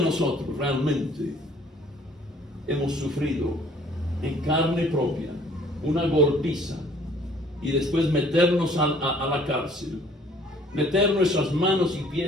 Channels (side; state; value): both; normal; correlation 0.57